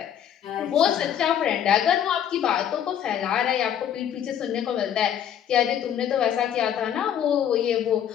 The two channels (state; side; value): quieter; right; 9.6 dB